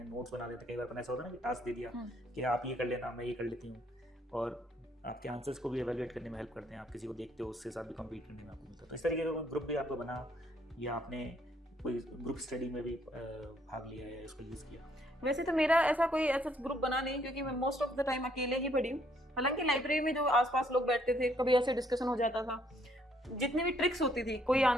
नोट्स बना देते हैं। कई बार अपन ऐसा होता है ना कि टास्क दे दिया कि आप ये कर लेना, मैं ये कर लेती हूँ, और आपके आंसर्स को भी एवेलुएट करने में हेल्प करते हैं, आप किसी को देखते हो उसके साथ भी कम्पीट करने में आपको मिलता है। तो इस तरीके का ग्रुप भी आपको बना, या आपने कोई ग्रुप स्टडी में भी भाग लिया है, इसको यूज़ किया? वैसे तो मेरा ऐसा कोई ऐसा ग्रुप बना नहीं, क्योंकि मैं मोस्ट ऑफ द टाइम अकेले ही पढ़ी हूँ। हालांकि लाइब्रेरी में जो आसपास लोग बैठते थे कभी ऐसे डिस्कशन हो जाता था, जितनी भी ट्रिक्स होती थी, कोई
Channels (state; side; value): normal; both; correlation 0.68